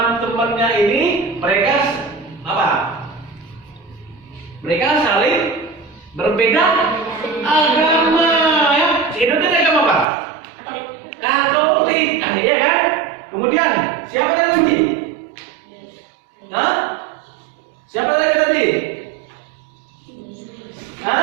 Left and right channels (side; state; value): left; drops out; at 10.1 s